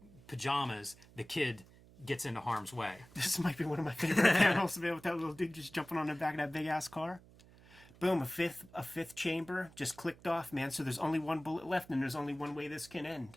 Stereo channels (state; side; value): noise; right; hum, 23 dB below the sound